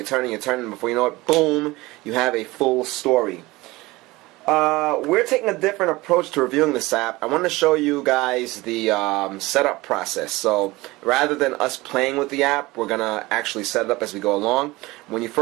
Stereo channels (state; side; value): quieter; left; 20.8 dB